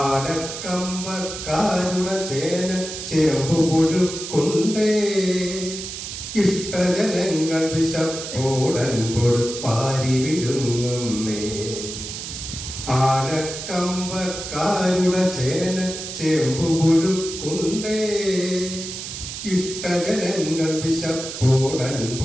ചേന ചേമ്പു പുഴുക്കുണ്ടേ. ഇഷ്ടജനങ്ങൾ വിശപ്പോടൻപോട് പാരി വിഴുങ്ങുന്നേ. ആനക്കമ്പക്കാരുടെ ചേന ചേമ്പു പുഴുക്കുണ്ടേ. ഇഷ്ടജനങ്ങൾ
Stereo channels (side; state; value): right; noise; hiss, 8 dB below the sound